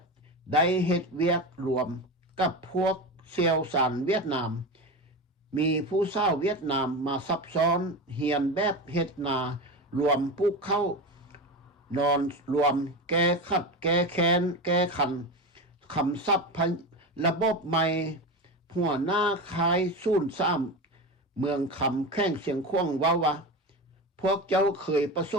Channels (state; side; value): normal; both; correlation 0.22